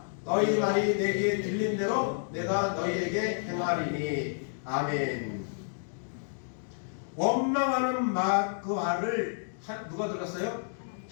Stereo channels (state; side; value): silent; right; digital silence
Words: 너희 말이 내게 들린 대로 내가 너희에게 행하리니. 아멘. 원망하는 말, 그 말을 누가 들었어요?